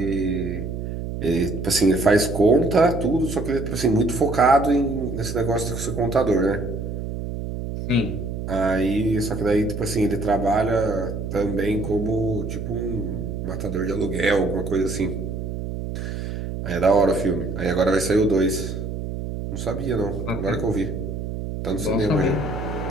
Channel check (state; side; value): noise; right; hum, 5 dB below the sound